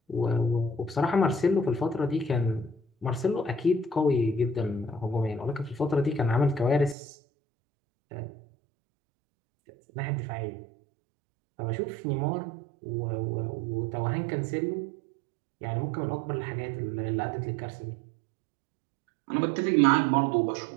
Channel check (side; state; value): left; drops out; at 7.0 s